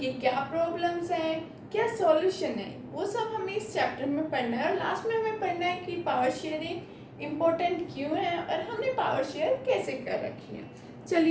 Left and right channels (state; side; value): identical; both; correlation 1.00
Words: क्या प्रॉब्लम्स हैं, क्या सॉल्यूशन है, वो सब हमें इस चैप्टर में पढ़ना है। और लास्ट में हमें पढ़ना है कि पावर शेयरिंग इम्पोर्टेंट क्यों है और हमने पावर शेयर कैसे कर रखी है।